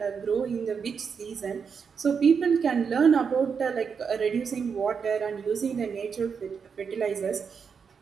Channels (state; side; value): quieter; left; 6.2 dB